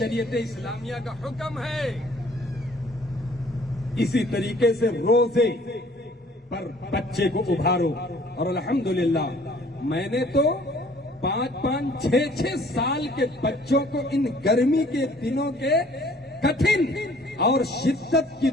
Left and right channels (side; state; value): both; normal; correlation 0.56